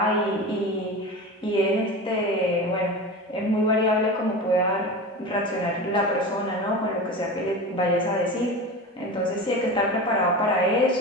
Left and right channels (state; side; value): normal; both; correlation 0.28